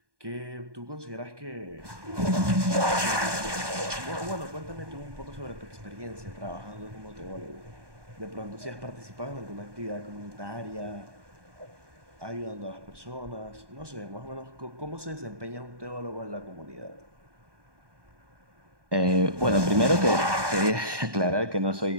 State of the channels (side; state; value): left; late; 1.2 ms